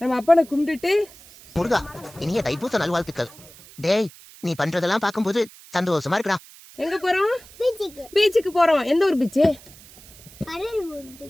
நம்ம அப்பனை கும்பிட்டுட்டு முருகா இனிய தைப்பூச நல்வாழ்த்துக்கள். டேய் நீ பண்றதெல்லாம் பாக்கும்போது சந்தோஷமா இருக்குடா. எங்க போறோம்? பீச்சுக்கு போறோம். எந்த ஒரு பீச்சு?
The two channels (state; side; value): noise; right; hiss, 21 dB below the sound